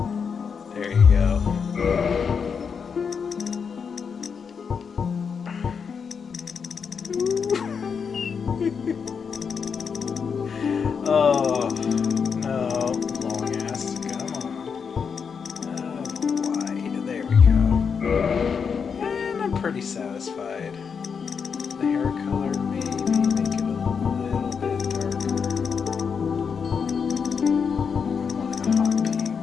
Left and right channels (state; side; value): quieter; right; 6.2 dB